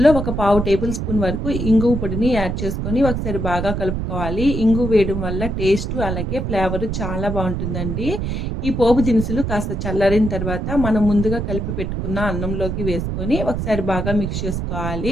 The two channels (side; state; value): right; noise; rumble, 2 dB below the sound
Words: 1/4 టేబుల్ స్పూన్ వరకు ఇంగువ పొడిని యాడ్ చేసుకొని ఒకసారి బాగా కలుపుకోవాలి. ఇంగువ వేయడం వల్ల టేస్ట్ అలాగే ఫ్లేవర్ చాలా బాగుంటుందండి. ఈ పోపు దినుసులు కాస్త చల్లారిన తర్వాత మనం ముందుగా కలిపి పెట్టుకున్న అన్నంలోకి వేసుకొని ఒకసారి బాగా మిక్స్